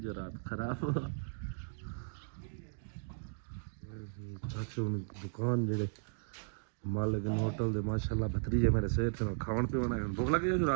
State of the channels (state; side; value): silent; left; digital silence